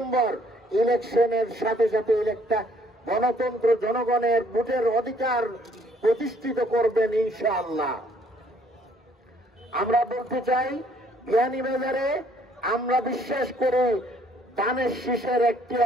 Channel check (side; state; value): both; normal; correlation 0.63